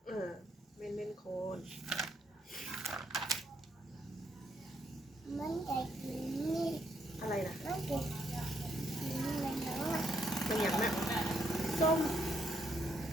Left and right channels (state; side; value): normal; both; correlation 0.75